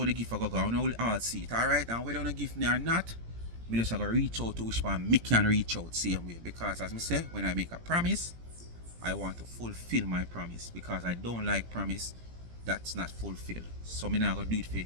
the gift I go on. I will all see it. Alright, and whether you don't give me or not, me just gonna reach out to which one me can reach out same way. Because as I say, when I make a promise, I want to fulfill my promise. Because I don't like promise that's not fulfilled. So me not gonna do it for you.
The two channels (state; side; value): late; left; 17 ms